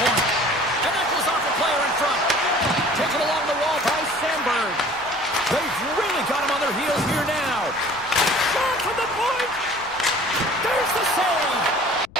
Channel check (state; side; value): noise; left; rumble, 23 dB below the sound